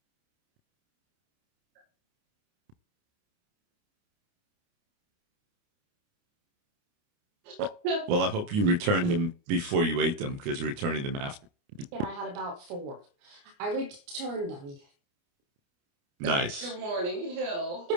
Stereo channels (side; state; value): left; late; 29 ms